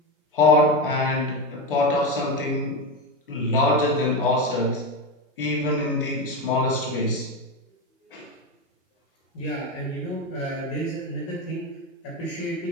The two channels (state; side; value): normal; both; correlation 0.15